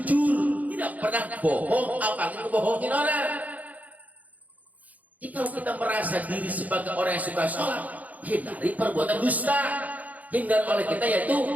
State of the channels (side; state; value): left; late; 0.077 ms